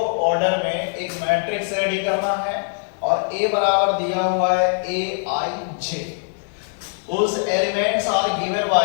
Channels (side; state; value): right; silent; digital silence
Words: ऑर्डर में एक मैट्रिक्स रेडी करना है और ए बराबर दिया हुआ है ए आई जे, उस एलिमेंट्स आर गिवन